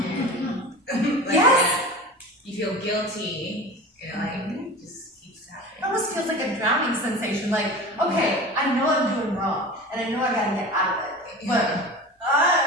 And yes. You feel guilty, it just keeps happening. It almost feels like a drowning sensation. Like, okay, I know I'm doing wrong, and I know I gotta get out of it, but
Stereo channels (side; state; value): both; normal; correlation 0.33